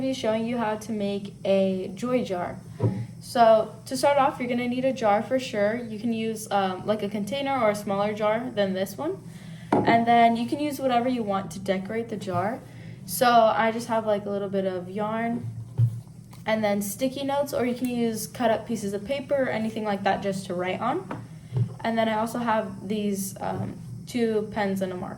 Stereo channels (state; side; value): identical; both; correlation 1.00